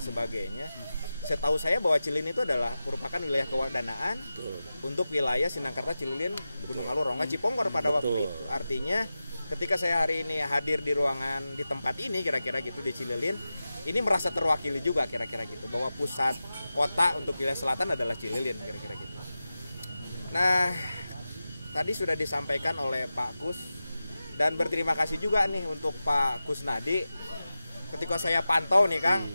sebagainya. Setahu saya bahwa Cililin itu adalah merupakan wilayah kewardanaan untuk wilayah Sindangkerta, Cililin, Gunung Alur, Rongga, Ciponggor pada waktu itu. Artinya ketika saya hari ini hadir di ruangan di tempat ini kira-kira gitu di Cililin, ini merasa terwakili juga kira-kira gitu bahwa pusat kota untuk wilayah selatan adalah Cililin kira-kira gitu. Nah, tadi sudah disampaikan oleh Pak Kus, dan berterima kasih juga nih untuk Pak Kusnadi. Ketika saya pantau nih Kang,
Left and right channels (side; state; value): both; inverted; correlation -0.94